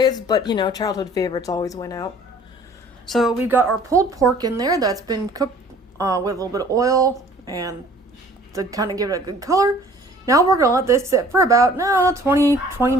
but you know, childhood favorites always win out. So we've got our pulled pork in there that's been cooked with a little bit of oil and to kind of give it a good color. Now we're going to let this sit for about 20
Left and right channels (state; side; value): normal; both; correlation 0.52